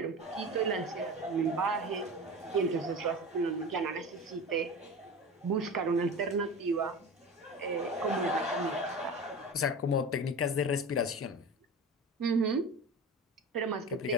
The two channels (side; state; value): both; normal; correlation 0.31